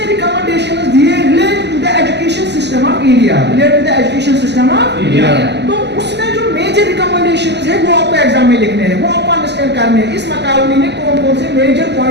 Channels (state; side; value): late; left; 0.50 ms